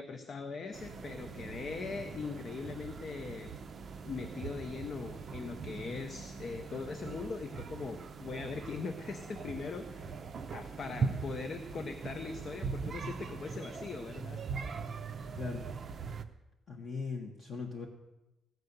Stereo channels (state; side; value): normal; both; correlation 0.73